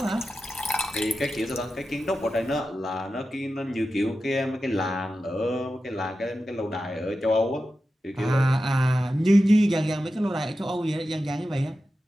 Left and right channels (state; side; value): normal; both; correlation 0.92